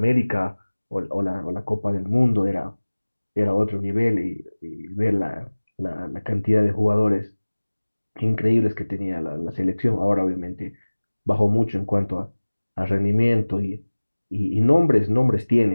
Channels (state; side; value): inverted; both; correlation -1.00